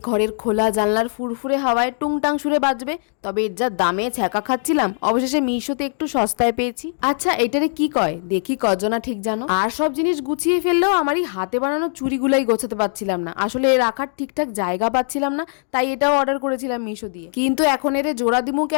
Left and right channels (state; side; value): silent; right; 65 dB below the other